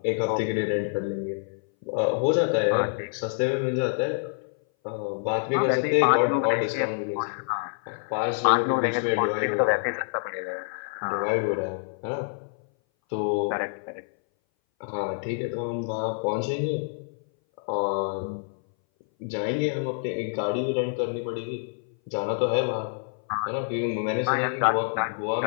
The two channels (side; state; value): right; silent; 59 dB below the other